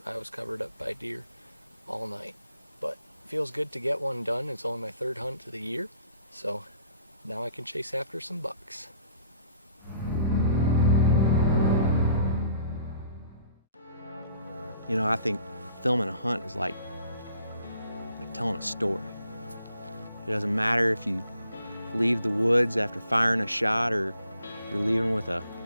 I was covered up by deer all night. But it feels good to get one done. It's only my third hunt of the year, so now I can chase after some bucks. You know, I think filming a hunt is like telling a story. It doesn't matter if you leave the woods after firing a shot or you're leaving with a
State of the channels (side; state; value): both; inverted; correlation -0.60